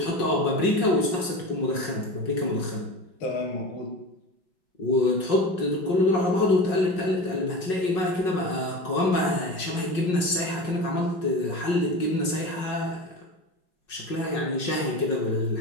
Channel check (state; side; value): late; right; 5.5 ms